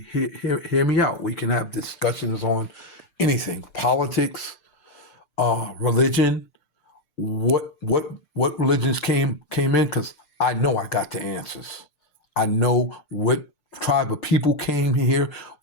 hear me out. We can have discussions on anything: politics, religion, what religions came in, because I know I got the answers. I know what tribe of people came here,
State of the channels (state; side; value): late; right; 6.7 ms